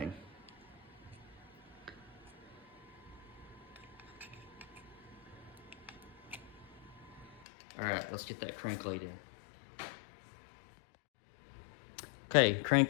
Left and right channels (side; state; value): right; drops out; at 7.5 s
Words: All right, let's get that crank laid in. Okay,